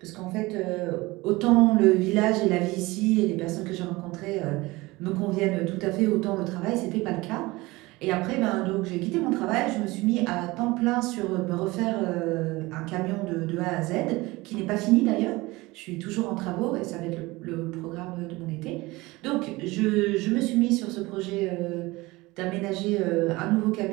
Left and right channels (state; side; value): quieter; left; 21.4 dB